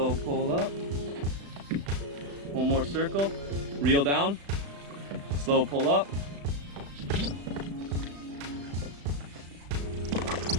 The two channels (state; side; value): late; left; 35 ms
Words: pull up. One more circle. Reel down. Slow pull up.